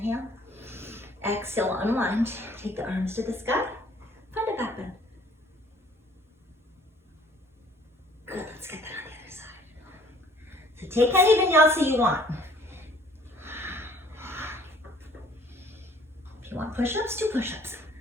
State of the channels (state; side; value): normal; both; correlation 0.56